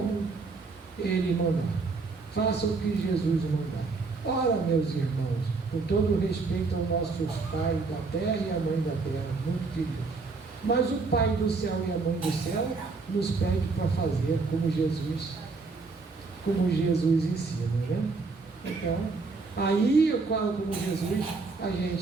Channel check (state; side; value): quieter; left; 4.1 dB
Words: Ele mandar, façam o que Jesus mandar. Ora, meus irmãos, com todo respeito aos nossos pais da terra e a mãe da terra, muito queridos, mas o Pai do céu e a mãe do céu nos pede para fazer como Jesus ensina, né? Então, aí eu falo como Jesus, a